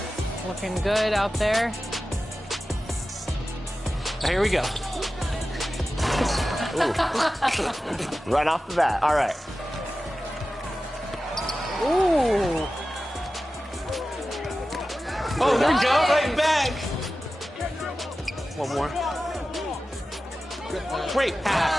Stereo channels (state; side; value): normal; both; correlation 0.94